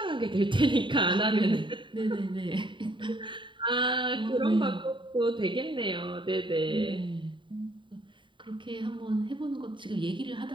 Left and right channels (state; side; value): late; left; 0.23 ms